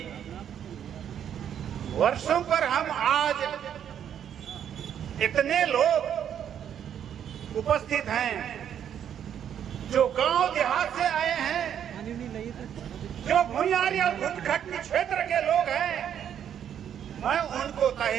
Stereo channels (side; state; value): left; quieter; 9.2 dB